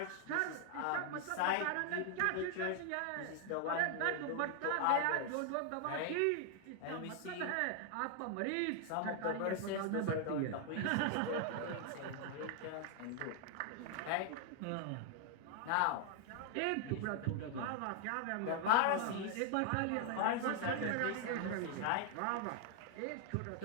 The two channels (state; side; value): different; both; correlation 0.00